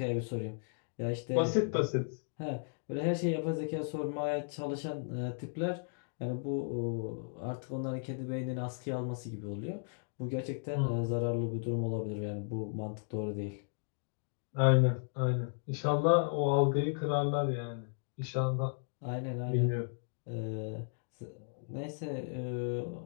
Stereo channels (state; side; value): silent; right; digital silence